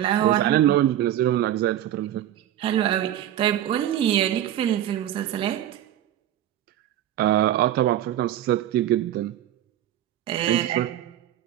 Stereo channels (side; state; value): left; quieter; 12.1 dB